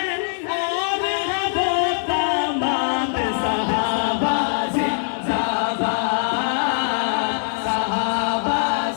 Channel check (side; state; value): right; silent; digital silence